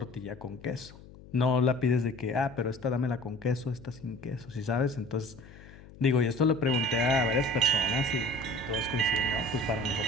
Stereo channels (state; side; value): noise; left; hum, 19 dB below the sound